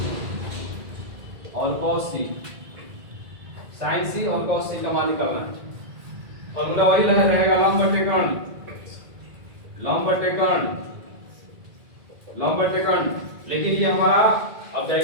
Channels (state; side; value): late; left; 1.9 ms